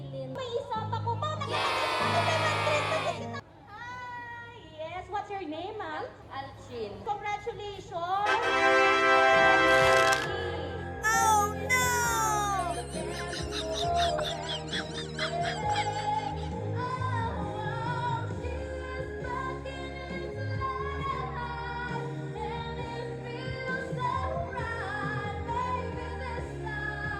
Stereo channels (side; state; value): both; identical; correlation 1.00